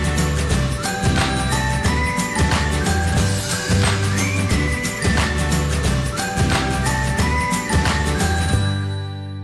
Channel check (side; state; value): both; identical; correlation 1.00